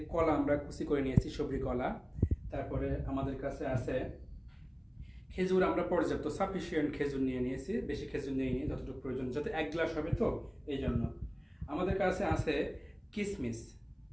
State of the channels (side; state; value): both; identical; correlation 1.00